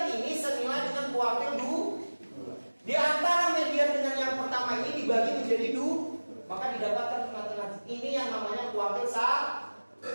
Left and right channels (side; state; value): both; inverted; correlation -1.00